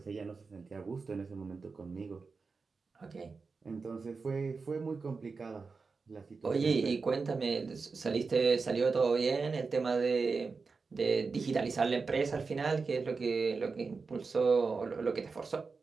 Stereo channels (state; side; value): quieter; left; 4.6 dB